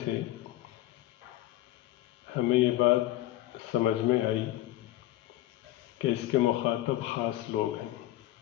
سے ہمیں یہ بات سمجھ میں آئی کہ اس کے مخاطب خاص لوگ ہیں۔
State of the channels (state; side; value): quieter; right; 15.3 dB